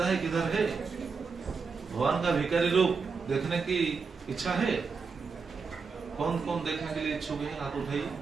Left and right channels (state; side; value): quieter; left; 5.1 dB